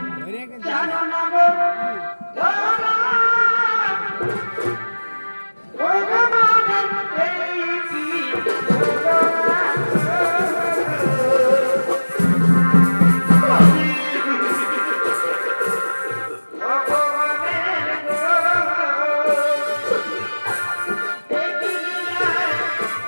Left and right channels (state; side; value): inverted; both; correlation -1.00